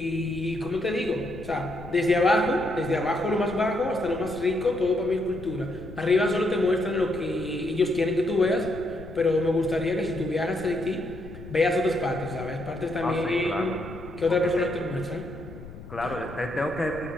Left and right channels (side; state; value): left; noise; rumble, 15 dB below the sound